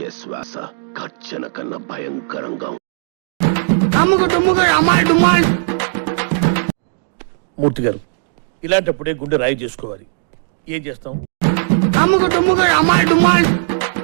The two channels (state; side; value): silent; left; 61 dB below the other